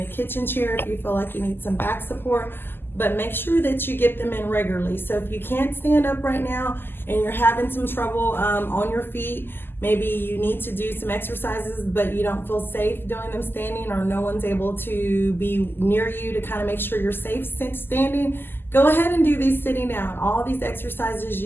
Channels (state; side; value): late; right; 0.10 ms